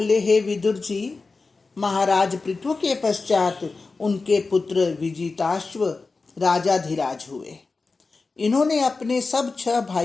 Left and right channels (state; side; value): quieter; right; 4.0 dB